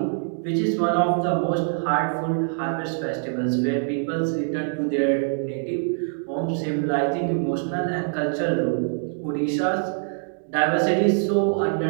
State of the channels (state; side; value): silent; left; digital silence